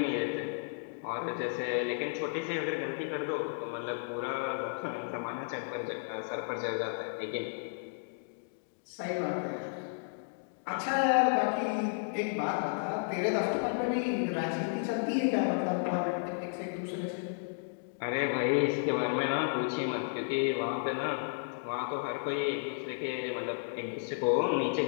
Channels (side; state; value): right; silent; digital silence